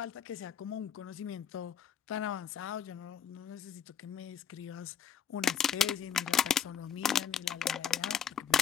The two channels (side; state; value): right; quieter; 7.9 dB